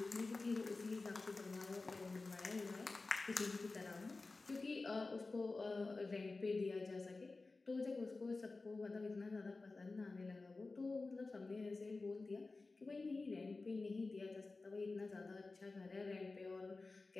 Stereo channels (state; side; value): quieter; right; 3.6 dB